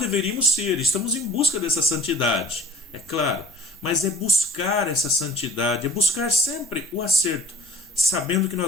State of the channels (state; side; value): normal; both; correlation 0.48